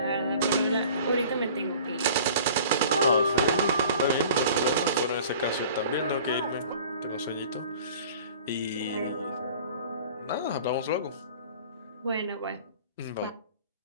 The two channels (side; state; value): both; inverted; correlation -0.46